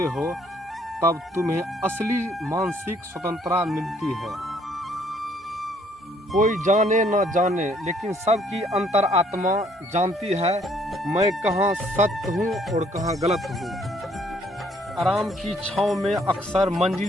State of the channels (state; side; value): normal; both; correlation 0.64